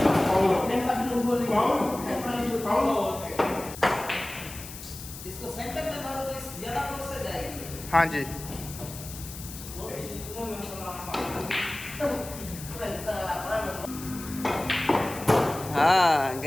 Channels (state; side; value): noise; left; hiss, 13 dB below the sound